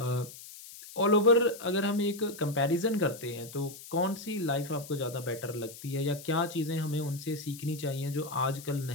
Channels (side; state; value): left; noise; hiss, 15 dB below the sound